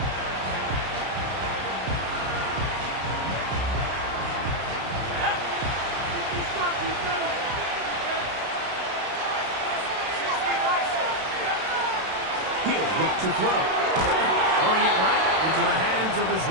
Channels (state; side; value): late; left; 32 ms